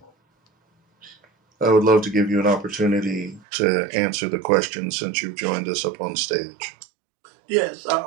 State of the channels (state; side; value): drops out; left; at 3.5 s